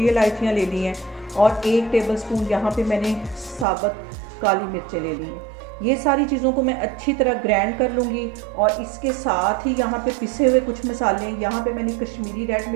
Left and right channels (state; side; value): drops out; left; at 3.7 s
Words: इलायचियाँ ले ली हैं, और 1 टेबल स्पून यहाँ पे मैंने साबुत काली मिर्चें ले ली हैं। ये सारी चीज़ों को मैं अच्छी तरह ग्राइंड कर लूँगी। और इसके साथ ही यहाँ पे पिसे हुए कुछ मसाले हैं। यहाँ पे मैंने कश्मीरी रेड